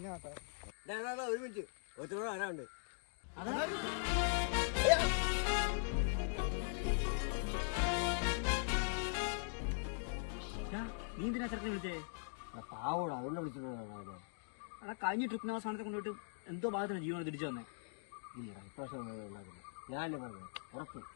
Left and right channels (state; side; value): silent; right; digital silence